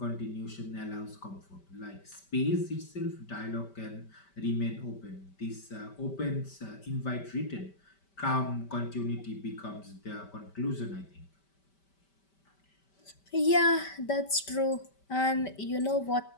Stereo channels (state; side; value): late; right; 5.1 ms